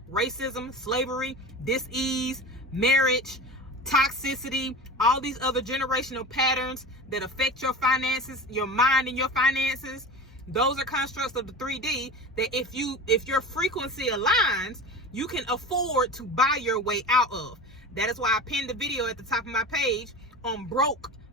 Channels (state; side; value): normal; both; correlation 0.31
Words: Racism, slavery, dis-ease, marriage, toxicity, all these other generational patterns that affect your finances, your mind and your finances, Those are constructs of the 3D that if your frequency aligns, you can afford to buy your way out of. That is why I pinned the video at the top of my page on broke